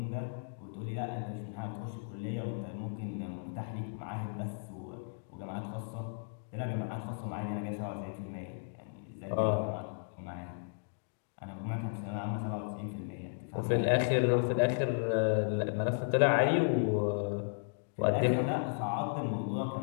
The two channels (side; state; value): right; silent; digital silence